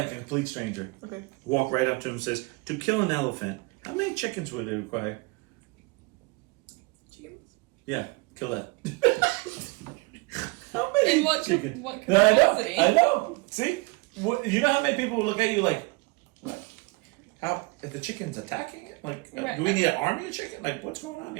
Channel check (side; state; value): left; quieter; 26.7 dB